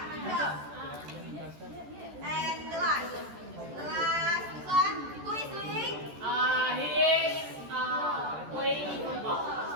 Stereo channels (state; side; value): late; left; 14 ms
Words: good job. And the last one. Who is doing? He is playing